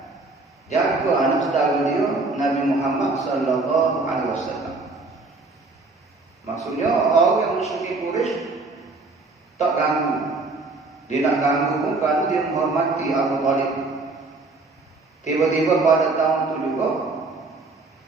jaga anak saudara dia Nabi Muhammad sallallahu alaihi wasallam. Maksudnya orang yang musyrik Quraisy tak ganggu. Dia nak ganggu bukan dia menghormati Abu Talib. Tiba-tiba pada tahun itu juga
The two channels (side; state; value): left; quieter; 3.5 dB